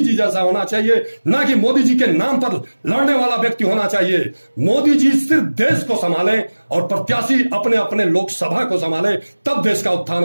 जैसा होना चाहिए, ना कि मोदी जी के नाम पर लड़ने वाला व्यक्ति होना चाहिए। मोदी जी सिर्फ देश को संभालें और प्रत्याशी अपने अपने लोकसभा को संभाले, तब देश का उत्थान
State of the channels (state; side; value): inverted; both; correlation -1.00